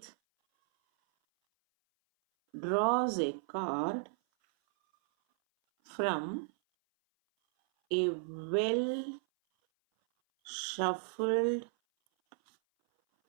draws a card from a well shuffled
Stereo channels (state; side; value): silent; left; 55 dB below the other